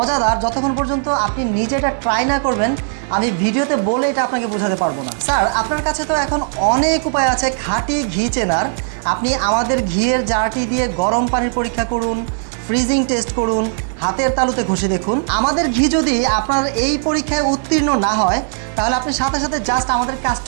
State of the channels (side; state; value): left; silent; digital silence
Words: যতক্ষণ পর্যন্ত আপনি নিজে এটা ট্রাই না করবেন আমি ভিডিওতে বলে এটা আপনাকে বোঝাতে পারবো না। স্যার, আপনার কাছে তো এখন অনেক উপায় আছে খাঁটি ঘি চেনার। আপনি আমাদের ঘিয়ের জারটি দিয়ে গরম পানির পরীক্ষা করুন, ফ্রিজিং টেস্ট করুন, হাতের তালুতে ঘষে দেখুন। আমাদের ঘি যদি আপনার এই পরীক্ষায় উত্তীর্ণ না হয়, তাহলে আপনি সাথে সাথে জাস্ট আমাদের